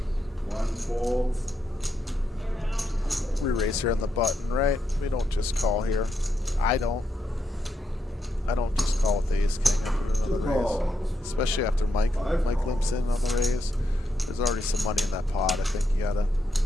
1 folds. We race here on the button, right? We don't just call here. I don't. I don't just call it the ace king after another raise, especially after Mike limps in on the raise. There's already some money in that pot. I think you gotta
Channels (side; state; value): both; normal; correlation 0.81